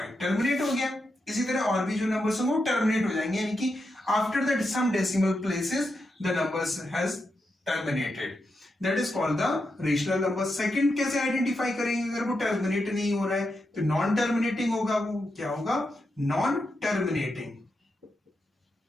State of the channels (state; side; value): normal; both; correlation 0.86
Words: टर्मिनेट हो गया। इसी तरह और भी जो नंबर्स होंगे वो टर्मिनेट हो जाएंगे, यानी कि after that some decimal places the numbers has terminated, that is called the rational number. Second कैसे आइडेंटिफाई करेंगे अगर वो टर्मिनेट नहीं हो रहा है, तो नॉन टर्मिनेटिंग होगा, वो क्या होगा, non terminating,